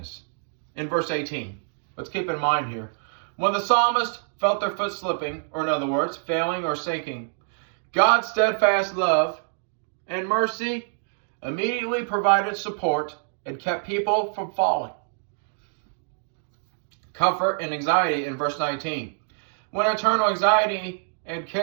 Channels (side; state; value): left; silent; digital silence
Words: In verse 18, let's keep in mind here. When the psalmist felt their foot slipping, or in other words, failing or sinking, God's steadfast love and mercy immediately provided support and kept people from falling. Comfort and anxiety in verse 19. When eternal anxiety and